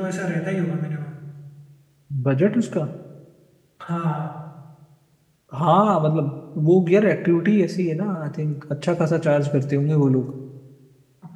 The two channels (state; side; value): identical; both; correlation 1.00